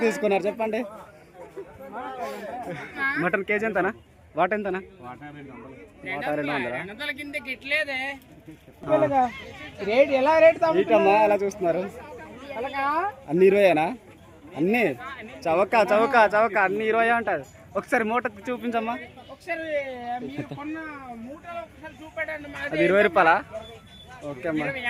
తీసుకున్నారు చెప్పండి. మటన్ కేజీ ఎంతనా? వాట ఎంతనా? వాట 200. కిందకి ఇట్లేదే రేట్ ఎలా రేట్ ఇటమ్మా అలా చూస్తున్నారు. అన్ని 20ఏనా? అన్ని చవక చవక చవక అన్ని 20 ఉంటుంది. ఒకసారి మూట చూపించమ్మా. అది 20 రూపాయలా? ఓకే అమ్మా.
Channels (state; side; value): identical; both; correlation 1.00